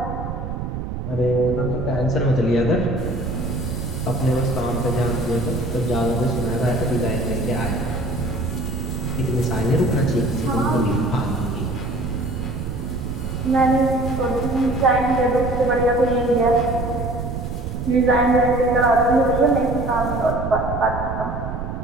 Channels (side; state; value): right; noise; rumble, 5 dB below the sound